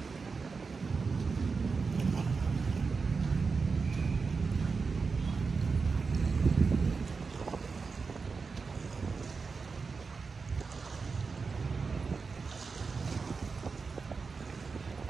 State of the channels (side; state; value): left; quieter; 4.8 dB